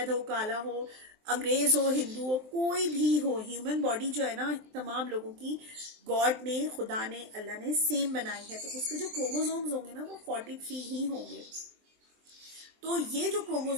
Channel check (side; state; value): left; late; 23 ms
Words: हो, काला हो, अंग्रेज हो, हिंदू हो, कोई भी हो, ह्यूमन बॉडी जो है ना, तमाम लोगों की गॉड ने, खुदा ने, अल्लाह ने सेम बनाई है, तो उसके जो क्रोमोसोम्स होंगे ना वो 43 ही होंगे। तो ये जो